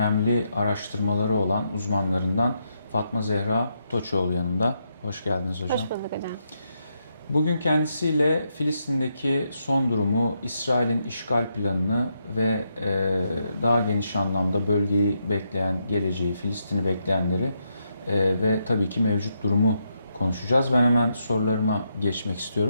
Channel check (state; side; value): inverted; both; correlation -0.80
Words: araştırmaları olan uzmanlarından Fatma Zehra Toçoğlu yanımda. Hoş geldiniz hocam. Hoş bulduk hocam. Bugün kendisiyle Filistin'deki son durumu, İsrail'in işgal planını ve daha geniş anlamda bölgeyi bekleyen, geleceği, Filistin'i bekleyenleri ve tabii ki mevcut durumu konuşacağız. Ben hemen sorularıma geçmek